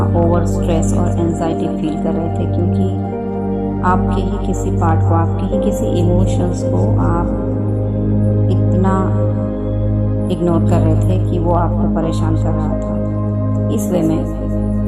ओवर स्ट्रेस और एंजाइटी फील कर रहे थे, क्योंकि आपके ही किसी पार्ट को, आपके ही किसी इमोशंस को आप इतना इग्नोर कर रहे थे कि वो आपको परेशान कर रहा था, इस वे में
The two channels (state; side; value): identical; both; correlation 1.00